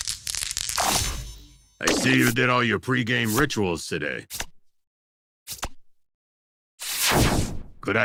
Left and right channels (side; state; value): both; identical; correlation 1.00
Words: I see you did all your pregame rituals today. Could